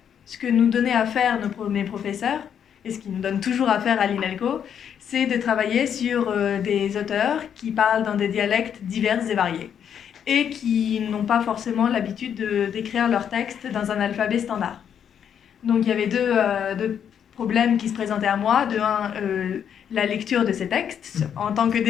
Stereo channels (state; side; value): quieter; right; 8.5 dB